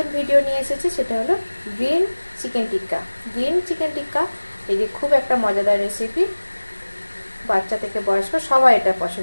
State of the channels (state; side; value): inverted; both; correlation -1.00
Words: ভিডিও নিয়ে এসেছি, সেটা হলো গ্রিন চিকেন টিক্কা। গ্রিন চিকেন টিক্কা এই যে খুব একটা মজাদার রেসিপি, বাচ্চা থেকে বয়স্ক সবাই এটা